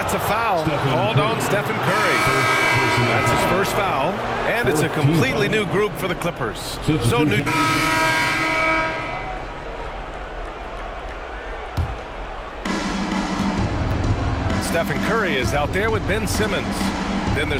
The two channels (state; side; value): identical; both; correlation 1.00